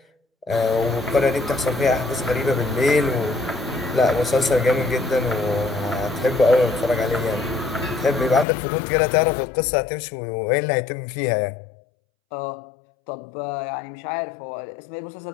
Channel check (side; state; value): right; drops out; at 8.5 s